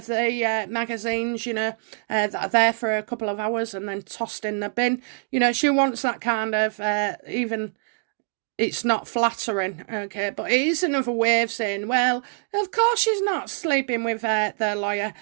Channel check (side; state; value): left; silent; digital silence